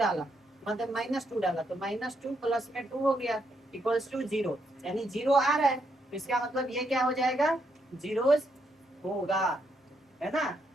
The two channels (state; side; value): normal; both; correlation 0.77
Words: मतलब -2 डाला, तो -2 प्लस में 2 हो गया इक्वल्स टू 0, यानी 0 आ रहा है तो इसका मतलब ये क्या हो जाएगा? जीरोज होगा, है ना?